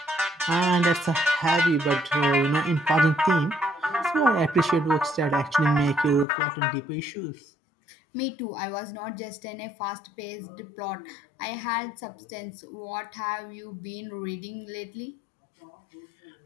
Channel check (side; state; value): right; drops out; at 6.2 s